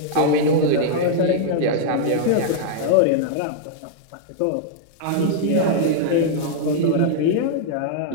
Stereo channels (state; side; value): different; both; correlation -0.01